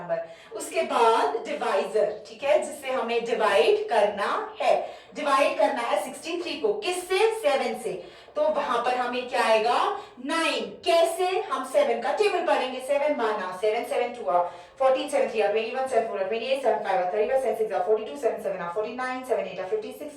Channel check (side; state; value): both; identical; correlation 1.00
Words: उसके बाद डिवाइजर, ठीक है, जिससे हमें डिवाइड करना है। डिवाइड करना है 63 को किससे, 7 से, तो वहां पर हमें क्या आएगा 9। कैसे, हम 7 का टेबल पढ़ेंगे। 7 माना 7 7 2 14 7 3 21 7 4 28 7 5 31 7 6 42 7 7 49 7 8 56